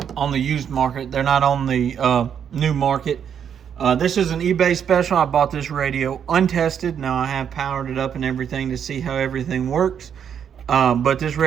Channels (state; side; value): quieter; left; 8.2 dB